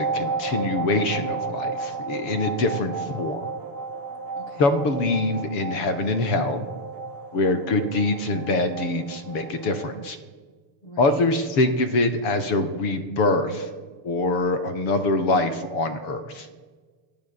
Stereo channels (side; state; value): right; late; 7.2 ms